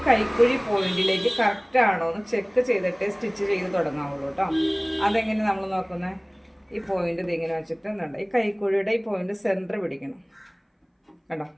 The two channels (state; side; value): identical; both; correlation 1.00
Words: കൈക്കുഴി പോയിന്റിലേക്ക് കറക്റ്റ് ആണോ എന്ന് ചെക്ക് ചെയ്തിട്ട് സ്റ്റിച്ച് ചെയ്ത് തുടങ്ങാവുള്ളൂ കേട്ടോ. അതെങ്ങനെ നമ്മൾ നോക്കുന്നത്, ഈ പോയിന്റ് ഇതിങ്ങനെ വെച്ചിട്ട് എന്തുണ്ട്, ഈ കൈക്കുഴിയുടെ ഈ പോയിന്റ് സെൻറ്റർ പിടിക്കണം കേട്ടോ.